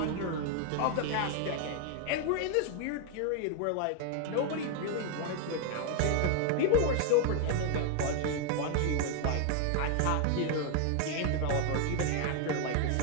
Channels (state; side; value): different; both; correlation 0.00